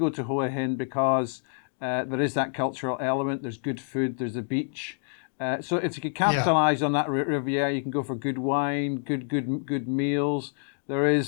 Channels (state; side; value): silent; right; digital silence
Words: to Hua Hin because there is that cultural element. There's good food. There's the beach. So if you could capitalize on that Riviera, you can go for good wine, good meals. There